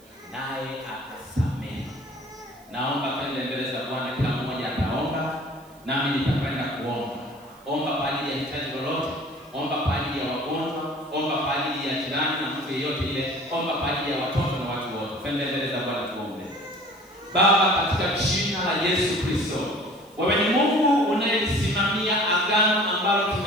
naye atasamehe. Naomba kwenda mbele za Bwana, kila mmoja ataomba, nami nitakwenda kuomba. Omba kwa ajili ya hitaji lolote, omba kwa ajili ya wagonjwa, omba kwa ajili ya jirani na mtu yeyote ile, omba kwa ajili ya watoto na watu wote. Kwenda mbele za Bwana tuombe. Baba, katika jina la Yesu Kristo, wewe ni Mungu unayesimamia agano ambalo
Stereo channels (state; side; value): noise; right; hiss, 29 dB below the sound